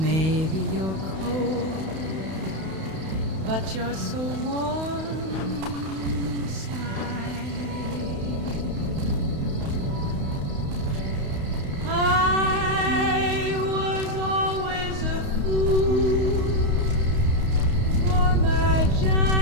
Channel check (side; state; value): left; late; 31 ms